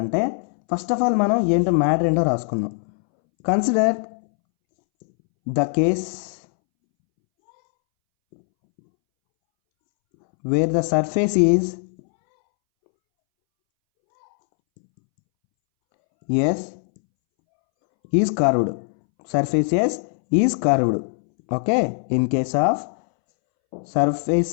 ఫస్ట్ ఆఫ్ ఆల్ మనం ఏంటో మ్యాటర్ ఏంటో రాసుకుందాం। Consider the case where the surface is S is curved. Surface S is curved. Okay, in case of surface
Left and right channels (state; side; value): silent; right; 65 dB below the other